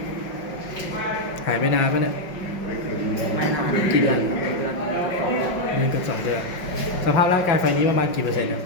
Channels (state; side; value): late; right; 5.4 ms